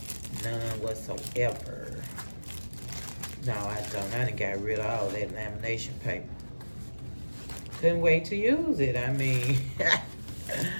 None whatsoever. No, I don't. I done got rid of all that lamination paper. Couldn't wait to use it. I mean,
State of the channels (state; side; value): inverted; both; correlation -1.00